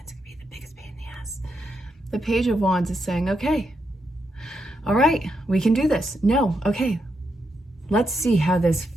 it can be the biggest pain in the ass. The Page of Wands is saying, okay, all right, we can do this. No, okay, let's see how this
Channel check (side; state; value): both; normal; correlation 0.82